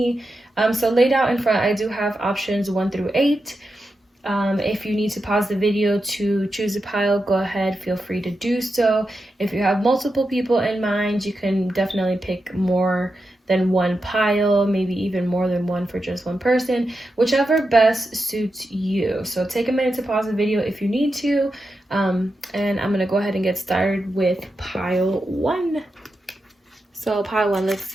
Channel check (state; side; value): normal; both; correlation 0.88